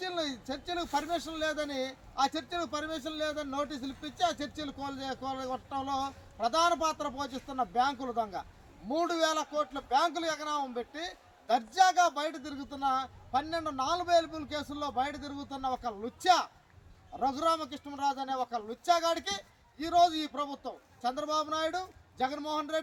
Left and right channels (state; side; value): identical; both; correlation 1.00